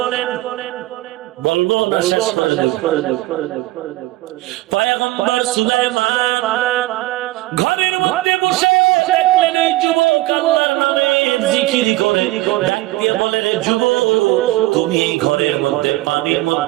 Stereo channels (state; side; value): quieter; left; 18.2 dB